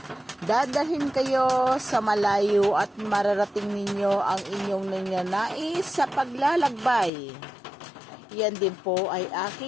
dadalhin kayo sa malayo at mararating ninyo ang inyong nananais sa paglalakbay. Yan din po ay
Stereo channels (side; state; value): right; drops out; at 7.1 s